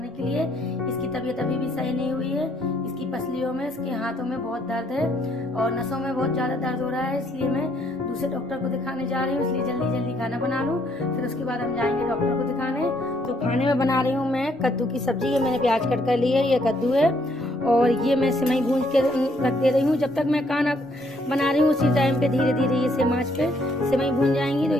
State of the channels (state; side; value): normal; both; correlation 0.69